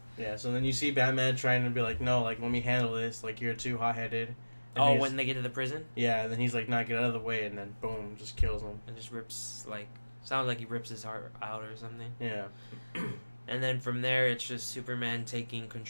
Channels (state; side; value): inverted; both; correlation -1.00